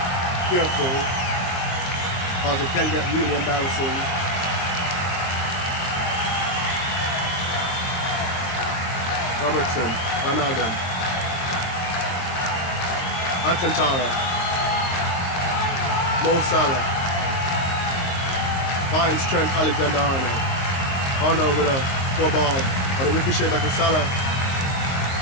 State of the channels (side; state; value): right; late; 23 ms